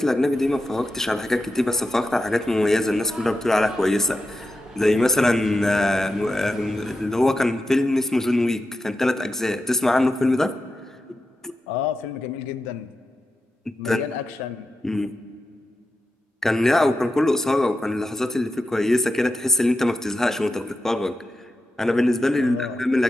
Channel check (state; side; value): normal; both; correlation 0.90